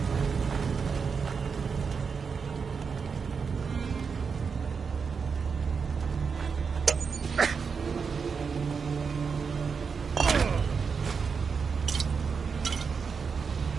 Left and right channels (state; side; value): quieter; left; 5.7 dB